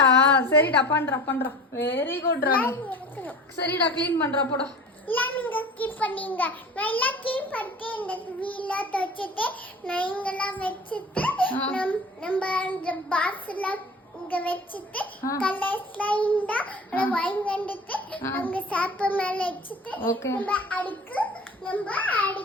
சரிடா பண்றா. வெரி குட்ரா. சரிடா க்ளீன் பண்றா போடா. நீங்க கீப் பண்ணீங்க. நான் எல்லாம் கீப் பண்ணிட்டு இந்த வீல துவைச்சிட்டு நான் இங்கெல்லாம் வச்சுட்டு நம்ம அந்த பாக்ஸ்ல இங்க வச்சுட்டு கலர்ஸ்லாம் இருந்தா வாங்கி வந்துட்டு அங்க சாப்ப மேல வச்சுட்டு நம்ம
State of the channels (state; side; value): normal; both; correlation 0.39